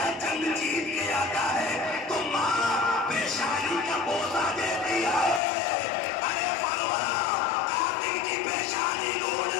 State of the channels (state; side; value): drops out; right; at 5.4 s